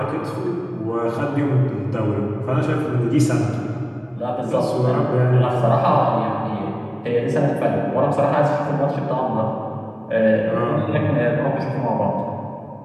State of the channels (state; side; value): identical; both; correlation 1.00